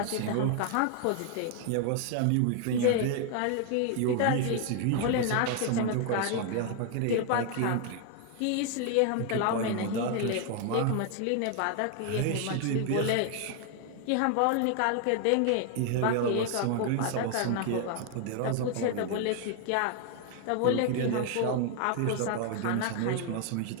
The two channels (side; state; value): both; different; correlation 0.00